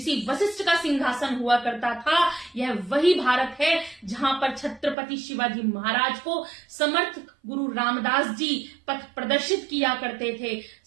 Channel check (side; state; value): left; drops out; at 5.0 s